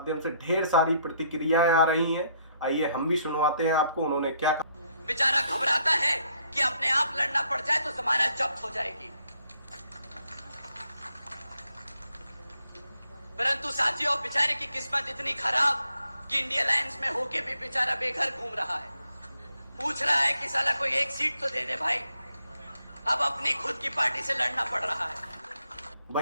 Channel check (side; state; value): both; inverted; correlation -0.72